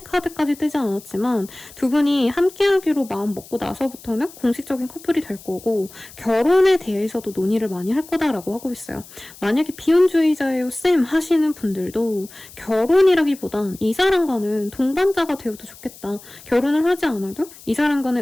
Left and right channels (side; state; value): left; noise; hiss, 20 dB below the sound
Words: 카드까지 뜨지 않았지만 두 분이 함께하기로 마음 먹고 나서부터는 공식적인 커플이 될 거고 결혼에 대해서도 논의를 많이 할 거다라고 하고 있어요. 만약에 비혼주의자예요 쌤 하시는 분들도 결혼이라기보단 이 사람과는 동반자가 되어도 좋겠다. 결혼을 하지 않아도 이